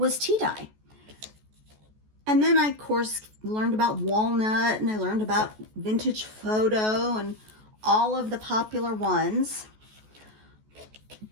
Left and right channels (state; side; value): late; left; 14 ms